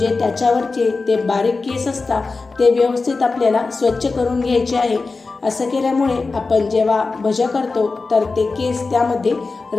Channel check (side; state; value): right; quieter; 4.0 dB